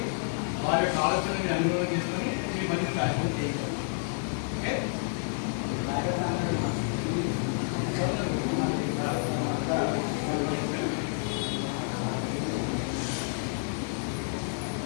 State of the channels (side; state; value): right; silent; 58 dB below the other